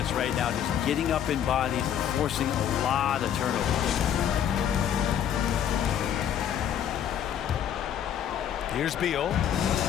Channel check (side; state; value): right; quieter; 9.5 dB